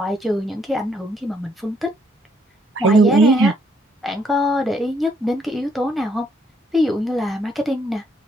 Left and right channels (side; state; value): both; normal; correlation 0.70